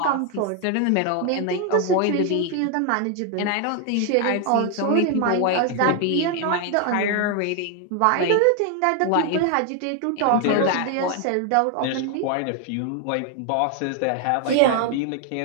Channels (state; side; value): different; both; correlation 0.01